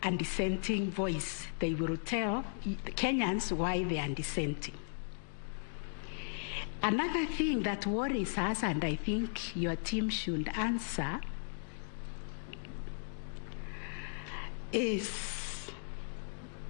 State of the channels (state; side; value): silent; right; digital silence